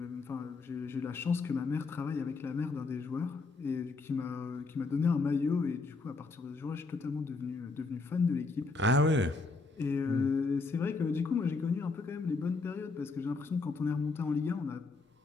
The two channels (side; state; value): right; quieter; 4.0 dB